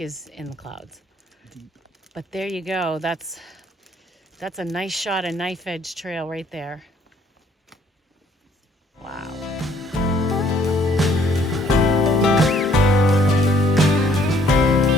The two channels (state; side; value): normal; both; correlation 0.63